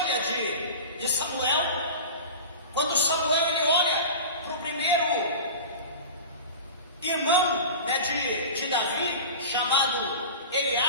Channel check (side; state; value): both; inverted; correlation -0.33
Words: de Samuel. Quando Samuel ele olha para o primeiro irmão de Davi, chamado